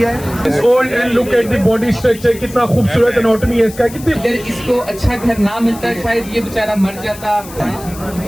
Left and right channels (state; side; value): noise; left; hiss, 17 dB below the sound